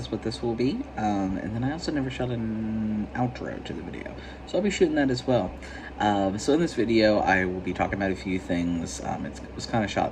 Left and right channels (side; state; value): both; identical; correlation 1.00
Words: what this will be. And then I also never shot an outro to the video, so I'll be shooting that as well. So in this video, I will be talking about a few things. It was kind of